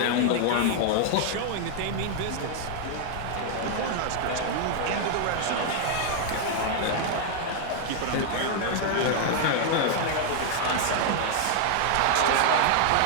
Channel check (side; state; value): both; different; correlation 0.00